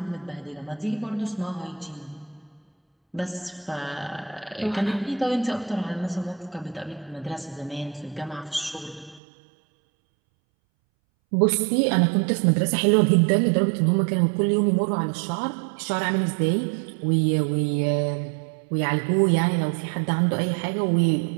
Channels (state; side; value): drops out; left; at 9.2 s